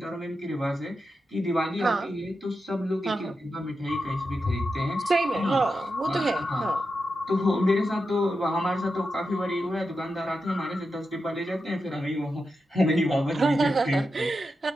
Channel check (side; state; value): both; normal; correlation 0.88